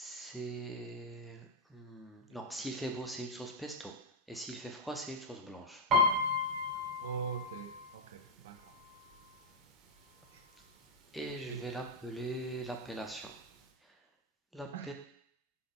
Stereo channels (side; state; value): both; normal; correlation -0.01